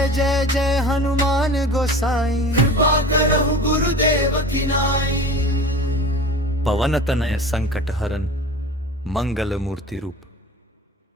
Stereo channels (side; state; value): both; normal; correlation 0.37